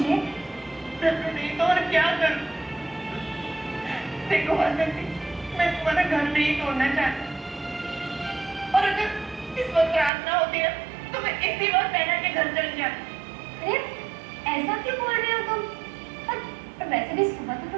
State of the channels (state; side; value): drops out; left; at 10.1 s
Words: नहीं तो और क्या करूं? देखो वासंती, मैं तुम्हारा घर नहीं तोड़ना चाहती, और अगर इस वक्त रात ना होती है तो मैं इसी वक्त बहना के घर चली जाती। अरे ऐसा क्यों बोल रहे हो तुम? पर वैसे भी सुबह तो